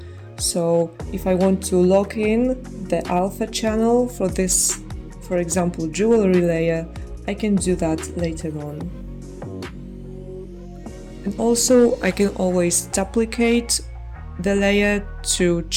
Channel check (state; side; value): identical; both; correlation 1.00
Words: So if I want to lock in the alpha channel for this, for example, jewelry layer, I can do that later on. And also I can always duplicate the layer to